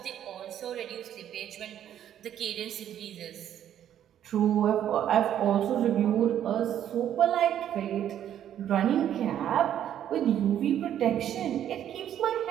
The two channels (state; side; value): quieter; left; 10.5 dB